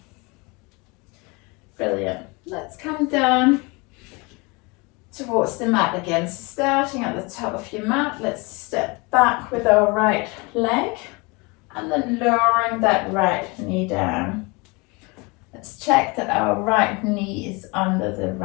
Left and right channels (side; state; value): right; quieter; 27.6 dB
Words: Brilliant. Let's come down towards the mat again. So starting at the top of your mat, let's step back with our right leg and then lowering that right knee down. Let's check that our right knee is under the